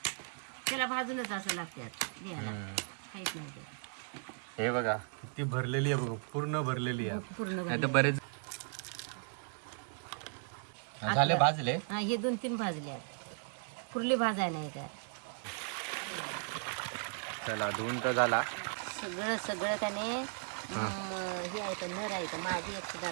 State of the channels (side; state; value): left; silent; 54 dB below the other